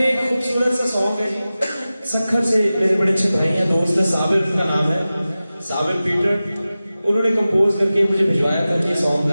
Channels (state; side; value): inverted; both; correlation -0.95